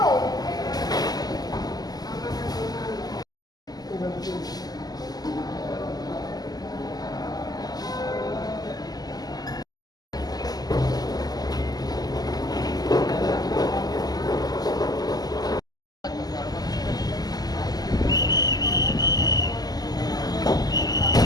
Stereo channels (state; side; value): late; right; 0.19 ms